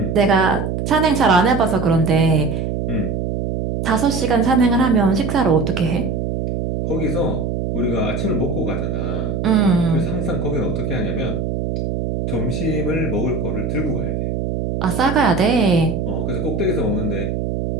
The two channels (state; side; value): noise; right; hum, 2 dB below the sound